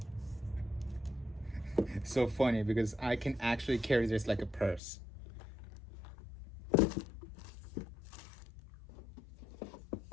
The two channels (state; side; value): drops out; right; at 4.8 s